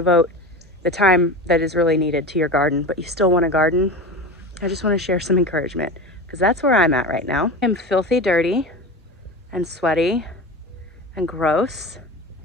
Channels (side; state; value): both; normal; correlation 0.29